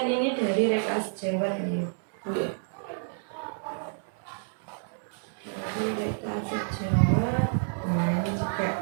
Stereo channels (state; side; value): silent; left; digital silence